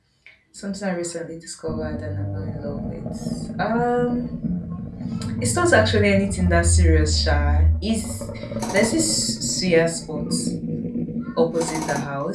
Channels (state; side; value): identical; both; correlation 1.00